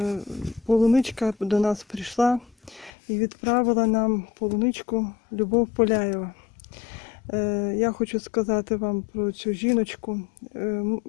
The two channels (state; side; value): drops out; right; at 2.9 s